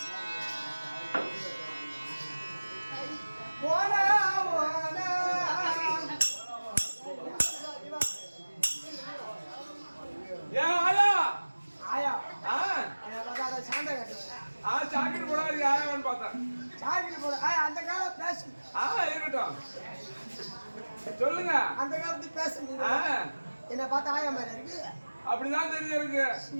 சாக்கிட்டு போடாது யாரான்னு பார்த்தேன். சாக்கிட்டு போட அந்த காலம் பேசு. இருக்கட்டும் சொல்லுங்க. அந்த காலத்து பேசு. என்ன பார்த்தா ஆயா மாதிரி இருக்கு. அப்படிதான் தெரியுது இருக்கு.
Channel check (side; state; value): both; inverted; correlation -1.00